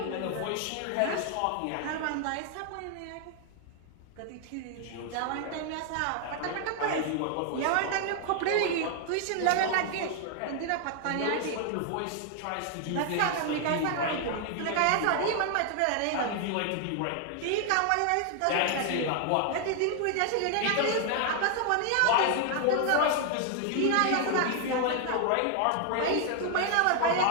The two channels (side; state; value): both; different; correlation 0.00